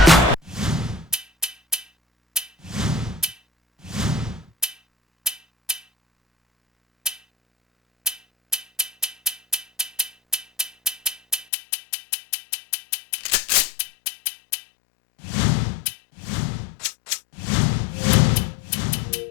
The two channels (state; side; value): drops out; right; at 11.5 s